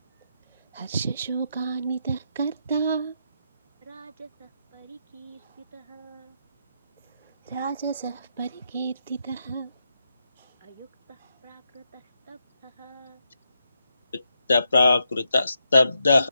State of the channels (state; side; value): inverted; both; correlation -0.82